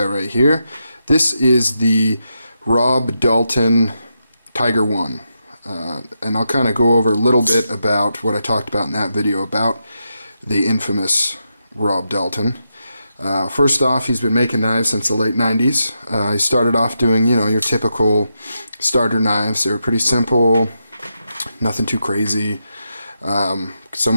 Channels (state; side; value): inverted; both; correlation -0.85